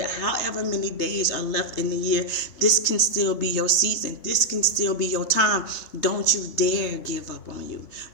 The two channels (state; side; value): late; right; 3.3 ms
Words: however many days are left in the year, this can still be your season. This can still be your time. Don't you dare give up on you.